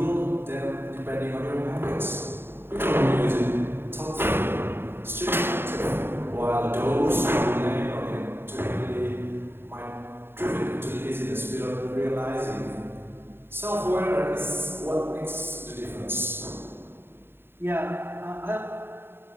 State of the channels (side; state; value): left; late; 0.11 ms